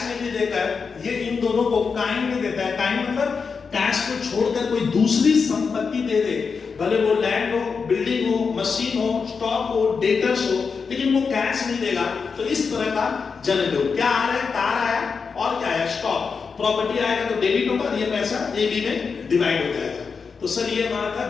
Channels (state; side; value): quieter; right; 5.4 dB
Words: में नहीं देकर ये इन दोनों को काइंड में देता है। काइंड मतलब कैश को छोड़कर कोई दूसरी संपत्ति दे दे, भले वो लैंड हो, बिल्डिंग हो, मशीन हो, स्टॉक हो, डेटर्स हो, लेकिन वो कैश नहीं देगा। तो इस तरह का जनरल हो, क्या आ रहा है, कार आया और क्या आया, स्टॉक, प्रॉपर्टी आएगा तो डेबिट होगा, ये पैसा ए बी में डिवाइड हो जाएगा। तो सर ये हमारा